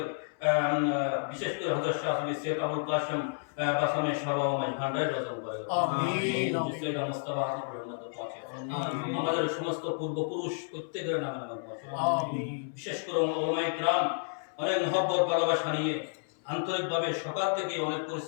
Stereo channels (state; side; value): silent; right; 57 dB below the other